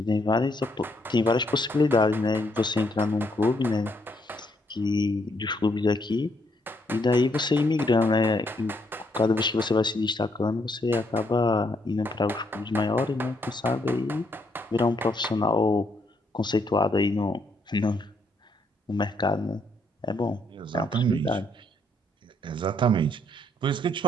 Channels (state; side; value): normal; both; correlation 0.73